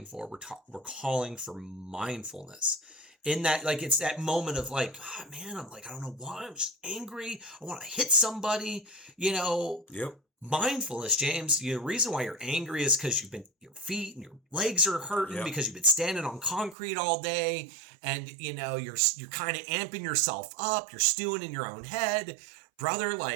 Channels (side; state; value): left; drops out; at 16.8 s